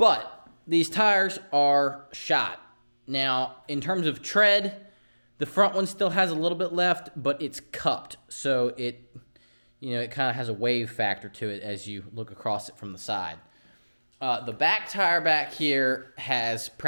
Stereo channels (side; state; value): both; inverted; correlation -1.00